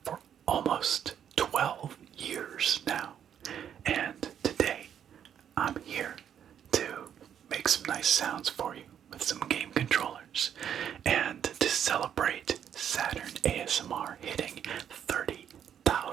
for almost 12 years now. And today I'm here to make some nice sounds for you with some game controllers and to celebrate Saturn ASMR hitting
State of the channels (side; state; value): left; quieter; 9.0 dB